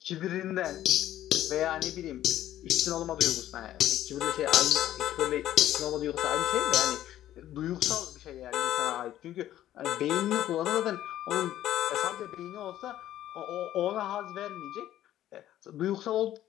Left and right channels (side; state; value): right; quieter; 12.9 dB